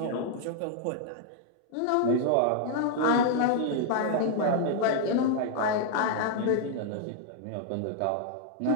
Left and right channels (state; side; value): different; both; correlation -0.01